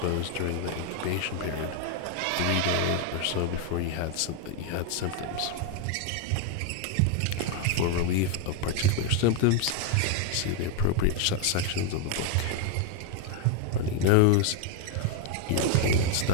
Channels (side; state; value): both; different; correlation 0.01